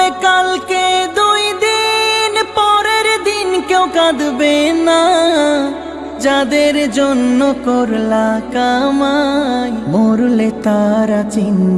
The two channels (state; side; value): identical; both; correlation 1.00